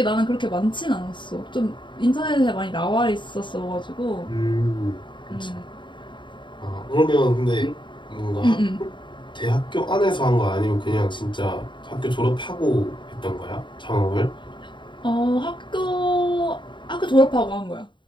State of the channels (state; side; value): late; right; 0.23 ms